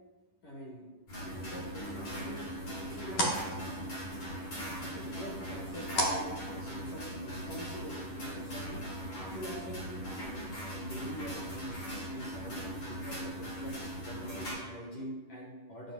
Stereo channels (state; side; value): late; right; 10 ms